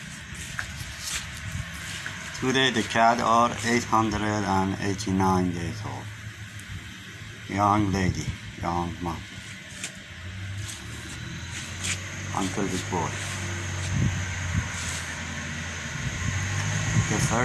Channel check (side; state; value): both; identical; correlation 1.00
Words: Today the cat are 889 days old. Young lady, young mom. Uncle Big Boy. The